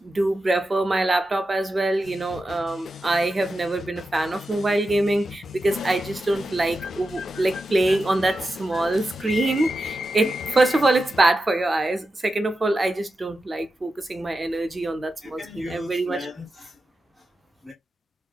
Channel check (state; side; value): normal; both; correlation 0.90